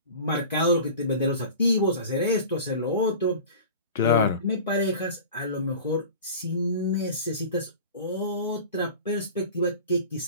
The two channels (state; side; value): inverted; both; correlation -0.38